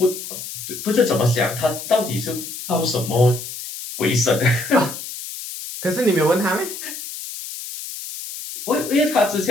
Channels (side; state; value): left; noise; hiss, 9 dB below the sound